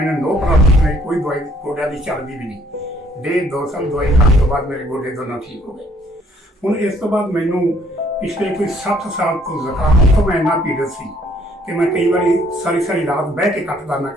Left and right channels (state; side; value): normal; both; correlation 0.63